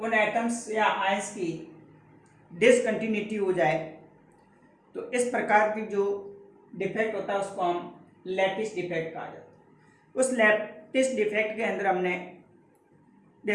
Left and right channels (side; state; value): both; identical; correlation 1.00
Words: एटम्स या आयंस की डिसकंटिन्यूटी हो जाए तो इस प्रकार की जो डिफेक्ट होता है उसको हम लैटिस डिफेक्ट कहा जाता है। उस लैटिस डिफेक्ट के अंदर हमने